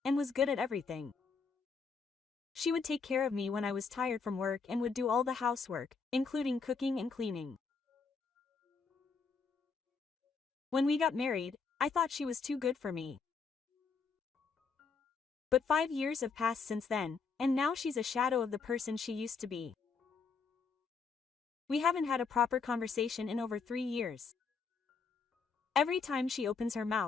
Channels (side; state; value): right; quieter; 5.1 dB